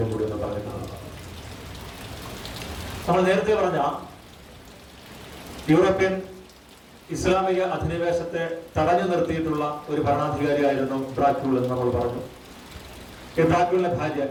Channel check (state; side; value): identical; both; correlation 1.00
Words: കൂടി ഒന്ന് പറയുന്നതാണ്. നമ്മൾ നേരത്തെ പറഞ്ഞ യൂറോപ്യൻ ഇസ്ലാമിക അധിനിവേശത്തെ തടഞ്ഞു നിർത്തിയിട്ടുള്ള ഒരു ഭരണാധികാരിയായിരുന്നു ഡ്രാക്യൂൾ എന്ന് നമ്മൾ പറഞ്ഞു. ഈ ഡ്രാക്യൂളിന്റെ ഭാര്യ